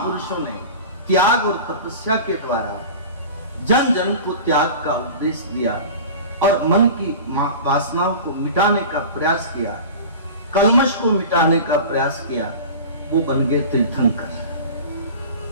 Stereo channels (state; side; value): inverted; both; correlation -0.35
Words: ने त्याग और तपस्या के द्वारा जन जन को त्याग का उपदेश दिया और मन की वासनाओं को मिटाने का प्रयास किया, कल्मश को मिटाने का प्रयास किया, वो बन गए तीर्थंकर।